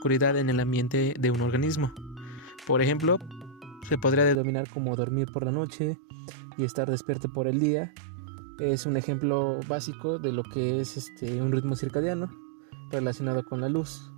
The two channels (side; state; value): left; drops out; at 4.4 s